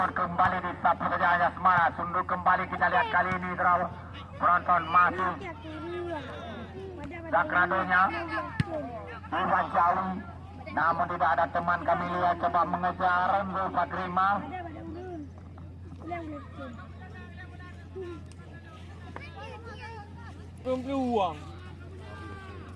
kembali disapu saja Anja Semara. Sunduk kembali kita lihat kali ini draw penonton masih Sakradonya Iwan Jawi, namun tidak ada teman kami lihat coba mengejar Zul Fakrima. Belum peluang.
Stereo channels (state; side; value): identical; both; correlation 1.00